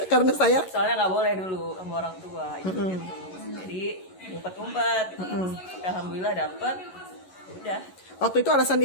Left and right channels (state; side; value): late; right; 11 ms